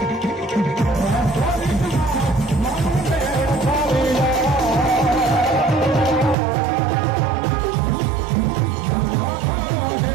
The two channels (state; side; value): drops out; left; at 6.4 s